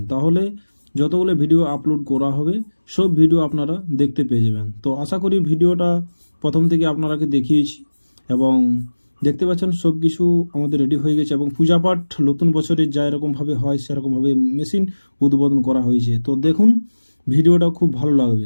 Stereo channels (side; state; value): both; inverted; correlation -1.00